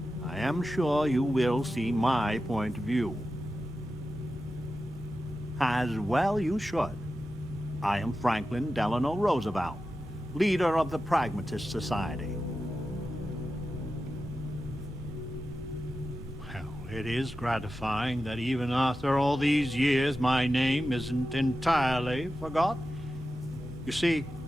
I am sure you will see my point of view. As well you should. I am Franklin Delano Roosevelt, leader of the Pragmatist Society. Well, it is gratifying that even after all these years my name isn't entirely forgotten. You see,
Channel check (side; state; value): both; normal; correlation 0.92